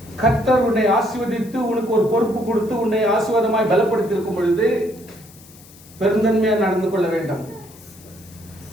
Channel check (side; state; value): left; noise; hiss, 23 dB below the sound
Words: கர்த்தர் உன்னை ஆசீர்வதித்து உனக்கு ஒரு பொறுப்பு கொடுத்து உன்னை ஆசீர்வாதமாய் பலப்படுத்தி இருக்கும் பொழுது பெருந்தன்மையா நடந்து கொள்ள வேண்டும்.